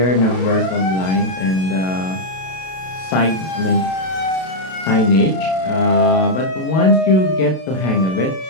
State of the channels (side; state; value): right; late; 32 ms